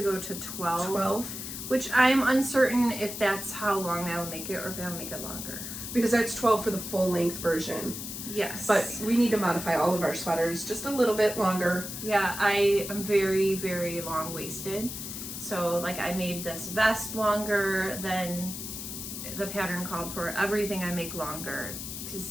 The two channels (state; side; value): noise; left; hiss, 7 dB below the sound